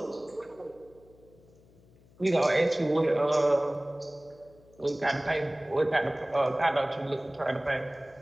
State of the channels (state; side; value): noise; left; hum, 27 dB below the sound